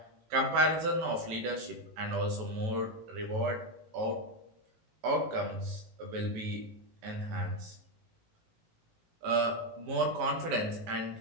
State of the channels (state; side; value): late; left; 18 ms